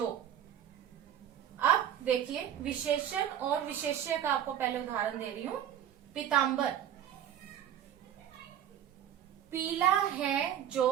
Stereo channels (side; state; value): left; quieter; 10.2 dB